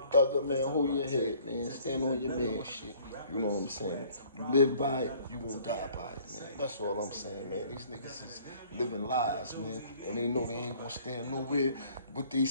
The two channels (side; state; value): both; inverted; correlation -0.56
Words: Thugger, man, hold your head, man. Stand on your man shit. You know what I'm saying? You live by it, you won't die by it, man. That's all I'm saying, man. These niggas is living lies, man. And they know they ain't gonna stand nowhere. What they